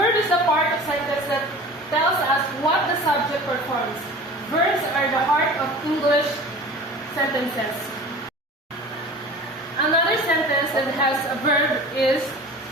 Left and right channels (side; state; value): both; normal; correlation 0.39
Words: is the part of sentence that tells us what the subject performs. Verbs are the heart of English sentences. Another sentence that has a verb is